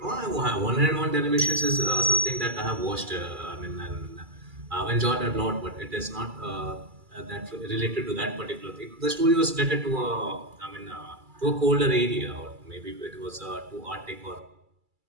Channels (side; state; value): left; late; 2.3 ms